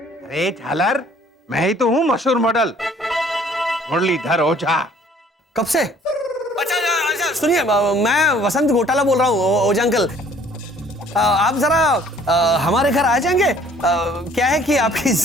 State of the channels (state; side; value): normal; both; correlation 0.57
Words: झालर, मैं ही तो हूँ मशहूर मॉडल मुरलीधर ओझा। कब से? अच्छा अच्छा, सुनिए, मैं वसंत घोटाला बोल रहा हूँ ओझा अंकल। आप जरा हमारे घर आ जाएंगे? क्या है कि आपकी